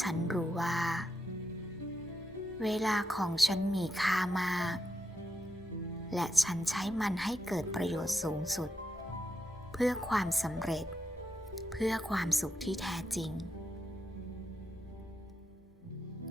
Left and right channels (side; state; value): left; noise; hum, 29 dB below the sound